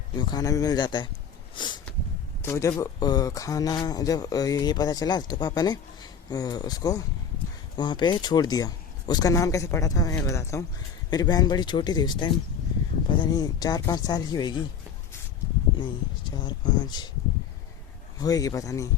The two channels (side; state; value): right; quieter; 7.0 dB